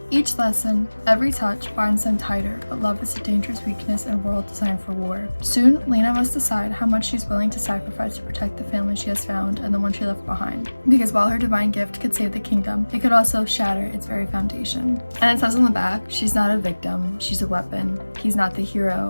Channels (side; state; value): both; inverted; correlation -1.00